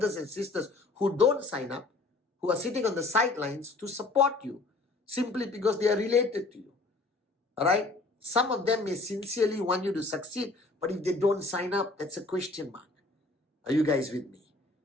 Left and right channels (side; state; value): right; quieter; 3.2 dB